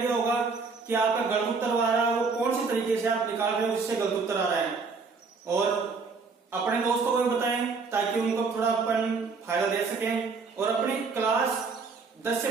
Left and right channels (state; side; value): quieter; left; 4.7 dB